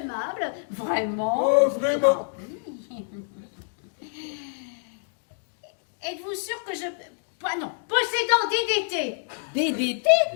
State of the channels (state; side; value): silent; right; digital silence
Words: vraiment. Oh, vraiment. Êtes-vous sûr que je... Pas non, possédant DDT. DDT?